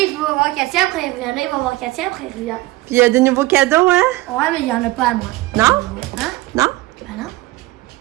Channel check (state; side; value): quieter; left; 19.0 dB